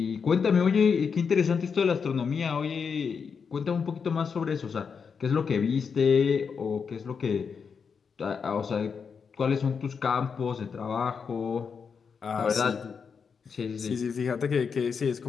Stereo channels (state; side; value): quieter; right; 6.0 dB